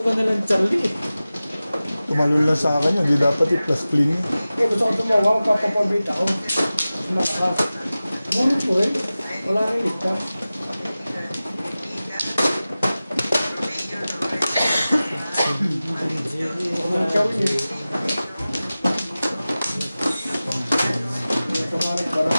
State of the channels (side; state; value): both; inverted; correlation -0.96